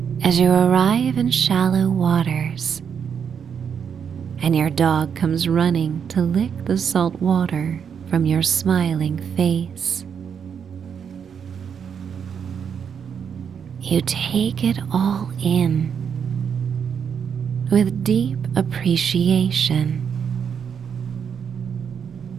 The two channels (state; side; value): quieter; left; 7.3 dB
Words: as you arrive in shallow waters, and your dog comes running to lick the salt water from your smiling face. You take it all in with deep appreciation.